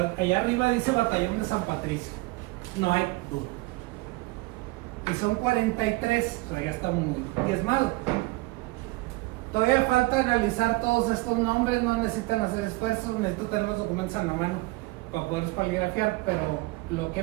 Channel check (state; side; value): quieter; left; 22.4 dB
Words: allá arriba dice Batallón de San Patricio, no hay duda. Y son 43, pero ya está muy diezmado. Todavía falta analizar todos estos nombres, no necesitan hacer esfuerzos, necesito tener los documentos en la mano para poderlos poligrafiar, pero lo que